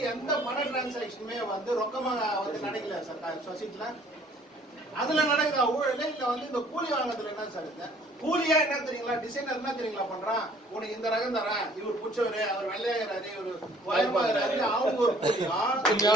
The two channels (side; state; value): both; normal; correlation 0.57